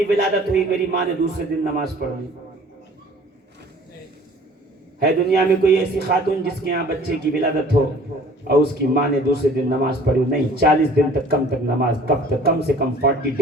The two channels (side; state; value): both; normal; correlation 0.51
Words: ولادت ہوئی, میری ماں نے دوسرے دن نماز پڑھ لی؟ ہے دنیا میں کوئی ایسی خاتون جس کے یہاں بچے کی ولادت ہو اور اس کی ماں نے دوسرے دن نماز پڑھی؟ نہیں. 40 دن تک نماز, کم سے کم 40